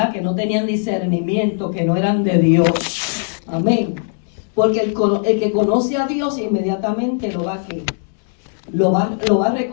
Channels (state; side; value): silent; right; 67 dB below the other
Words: Que no tenían discernimiento, que no eran de Dios. Amén. Porque el que conoce a Dios inmediatamente lo va a